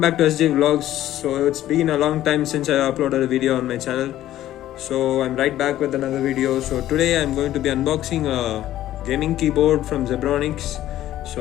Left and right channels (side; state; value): right; quieter; 13.4 dB